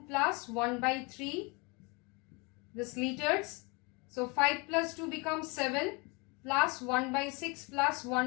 plus 1 by 3, this liters. So 5 plus 2 becomes 7 plus 1 by 6 plus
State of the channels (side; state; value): right; quieter; 29.0 dB